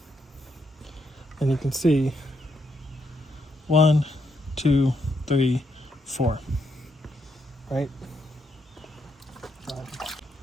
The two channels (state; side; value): normal; both; correlation 0.78